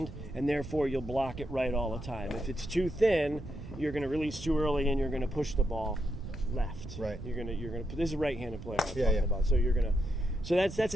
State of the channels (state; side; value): noise; right; rumble, 12 dB below the sound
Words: and therefore you'll block it right all the time. If it's too thin, you're going to release too early, and you're going to push the ball left. Right. You're going to. This is a right-handed player I'm talking about. So you're going to. So that's